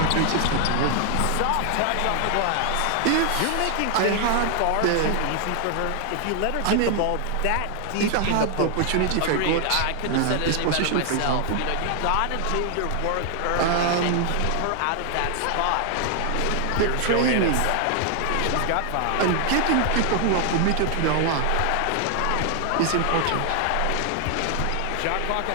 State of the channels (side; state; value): both; different; correlation 0.00